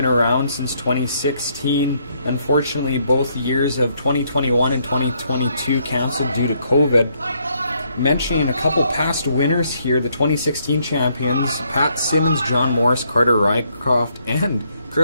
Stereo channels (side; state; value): both; inverted; correlation -0.72